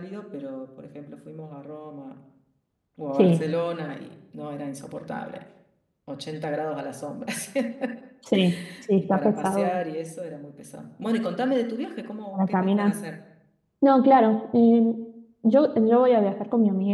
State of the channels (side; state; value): both; identical; correlation 1.00